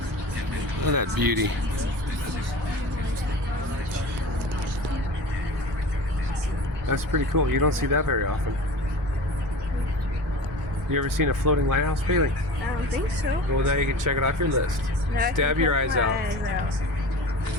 at that beauty. That's pretty cool. You don't see that very often. You ever seen a floating lighthouse, Bailey? I don't think so. Well, now you can check it off your list. Stab your eyes out.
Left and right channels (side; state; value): both; normal; correlation 0.35